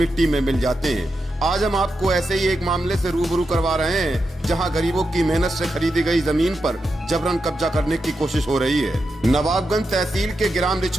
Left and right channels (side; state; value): both; normal; correlation 0.87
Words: में मिल जाते हैं। आज हम आपको ऐसे ही एक मामले से रूबरू करवा रहे हैं जहां गरीबों की मेहनत से खरीदी गई जमीन पर जबरन कब्जा करने की कोशिश हो रही है। नवाबगंज तहसील के ग्राम